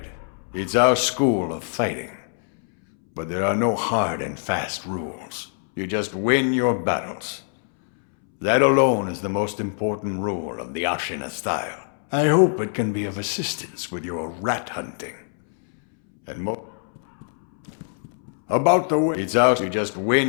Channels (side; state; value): right; silent; 63 dB below the other